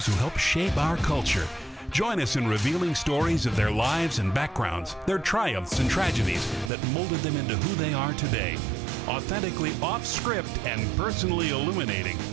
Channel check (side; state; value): left; drops out; at 6.7 s